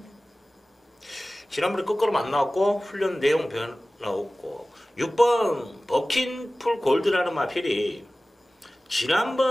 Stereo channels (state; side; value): normal; both; correlation 0.97